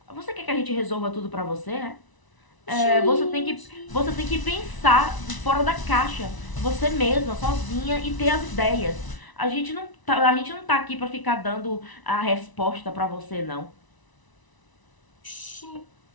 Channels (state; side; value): late; right; 1.0 ms